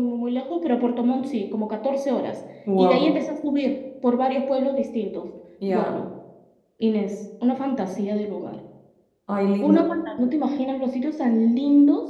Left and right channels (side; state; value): both; identical; correlation 1.00